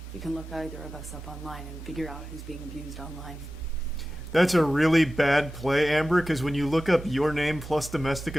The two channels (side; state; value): both; normal; correlation 0.95